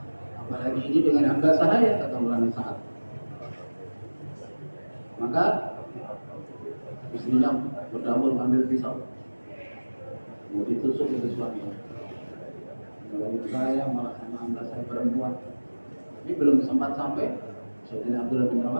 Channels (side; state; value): both; inverted; correlation -1.00